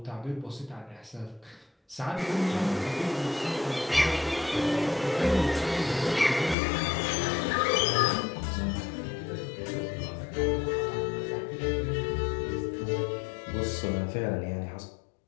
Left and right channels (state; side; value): drops out; right; at 6.6 s